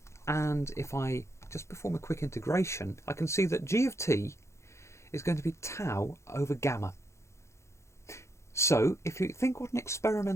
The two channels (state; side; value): late; right; 0.14 ms